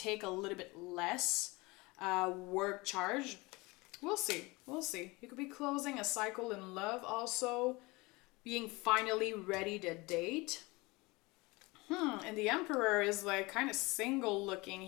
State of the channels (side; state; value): right; quieter; 23.9 dB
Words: a little bit less work charge? We'll see. You could be closing a cycle in love also. Being finally ready to date. And the Emperor is like kind of single looking